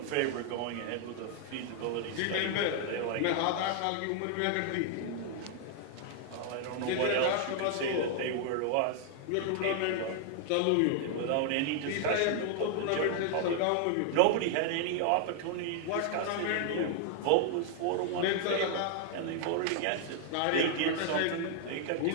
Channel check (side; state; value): both; different; correlation 0.00